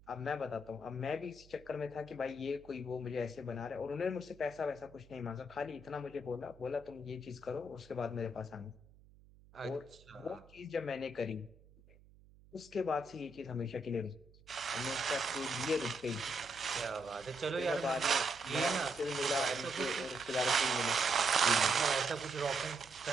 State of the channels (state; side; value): noise; right; hum, 25 dB below the sound